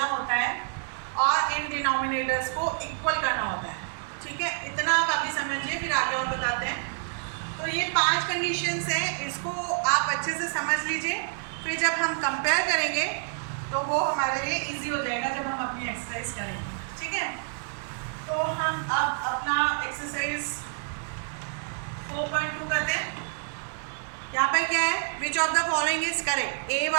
होता है और इन डिनोमिनेटर्स को इक्वल करना होता है, ठीक है। इतना आप अभी समझिए, फिर आगे और बताते हैं। तो ये 5 कंडीशंस हैं, इसको आप अच्छे से समझ लीजिए, फिर जब हम कंपेयर करेंगे तो वो हमारे लिए इजी हो जाएगा जब हम अपनी एक्सरसाइज करेंगे, ठीक है। तो हम अब अपना एक्सरसाइज 4.2 करते हैं। यहाँ पर क्या है, which of the following is correct, A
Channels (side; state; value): left; silent; 59 dB below the other